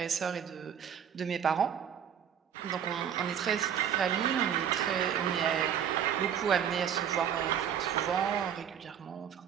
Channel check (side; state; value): left; quieter; 8.7 dB